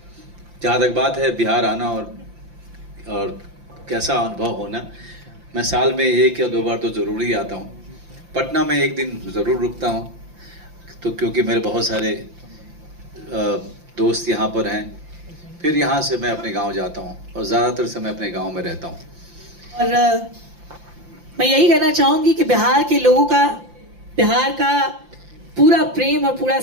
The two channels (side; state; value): left; late; 5.8 ms